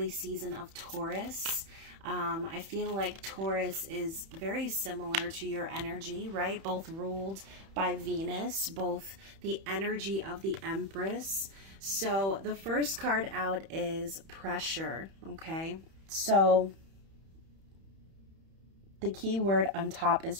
season of Taurus? I feel like Taurus is very similar to your energy, right? Both ruled by Venus, both the energy of the Empress. So the first card out is pressure, okay? So the key word on top is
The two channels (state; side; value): late; left; 31 ms